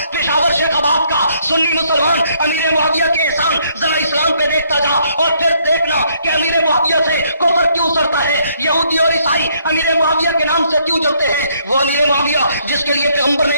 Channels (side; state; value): both; inverted; correlation -0.69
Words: پشاور شیخ آباد کا سنی مسلمان امیر معاویہ کے احسان ذرا اسلام پہ دیکھتا جا اور پھر دیکھنا کہ امیر معاویہ سے کفر کیوں سرتا ہے، یہودی اور عیسائی امیر معاویہ کے نام سے کیوں جلتے ہیں۔ وہ امیر معاویہ جس کے لیے پیغمبر نے